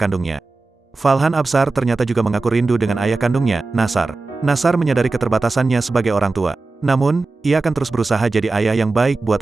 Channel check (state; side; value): quieter; left; 3.6 dB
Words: Falhan Absar ternyata juga mengaku rindu dengan ayah kandungnya, Nasar. Nasar menyadari keterbatasannya sebagai orang tua. Namun, ia akan terus berusaha jadi ayah yang baik buat